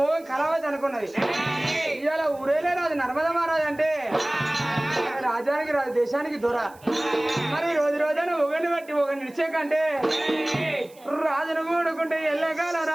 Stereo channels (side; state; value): right; noise; hiss, 26 dB below the sound